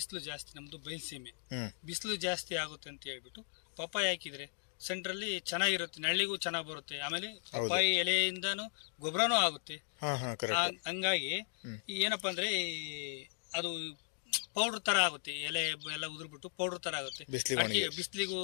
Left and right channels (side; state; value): right; silent; digital silence